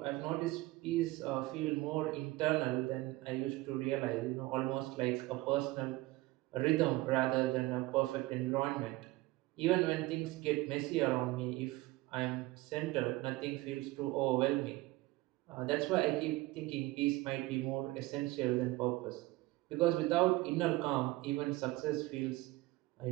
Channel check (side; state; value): left; quieter; 19.6 dB